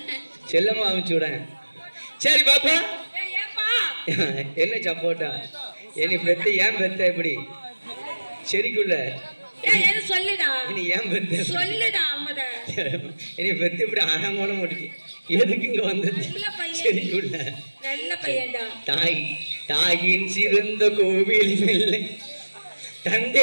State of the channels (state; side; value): inverted; both; correlation -1.00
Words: செல்லம்மா அமுச்சு விட. சரி பாப்பா, என்ன சப்போட்டா? என்னை பெத்த ஏன் பெத்த எப்படி சரிக்குள்ள சொல்லுடா, நீ ஏன் பெத்த சொல்லுடா. என்னை பெத்து இப்படி ஆழமான முடிச்சு எதுக்கு இங்க வந்தது? சரிக்குள்ள நல்ல பையன்டா. தாய் தாயின் சிறந்த கோவில் இல்லை,